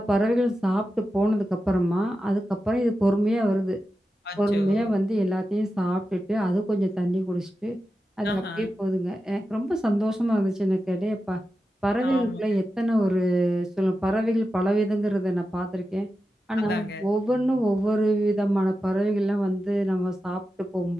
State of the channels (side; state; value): both; normal; correlation 0.91